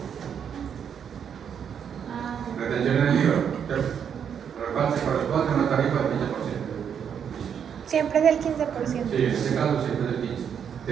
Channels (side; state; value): left; quieter; 7.9 dB